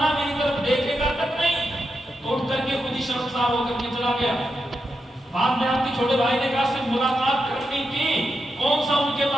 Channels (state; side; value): normal; both; correlation 0.86